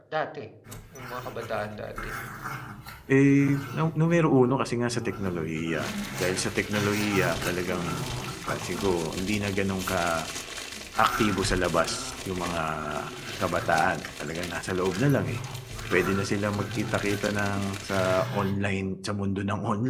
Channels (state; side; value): identical; both; correlation 1.00